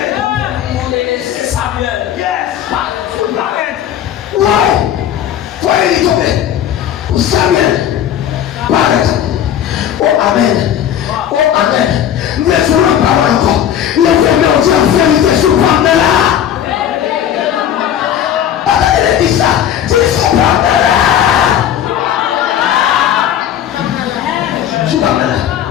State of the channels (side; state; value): right; quieter; 10.1 dB